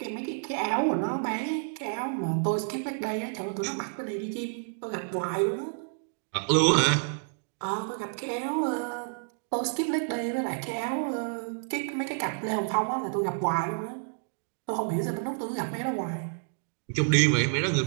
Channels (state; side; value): silent; left; digital silence